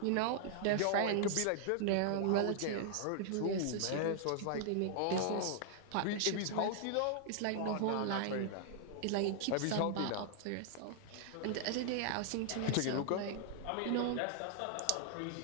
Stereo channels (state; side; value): different; both; correlation -0.01